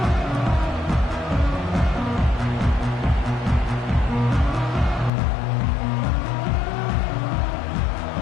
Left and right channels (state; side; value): drops out; right; at 5.1 s